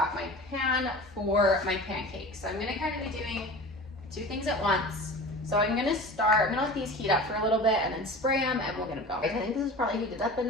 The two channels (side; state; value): both; normal; correlation 0.36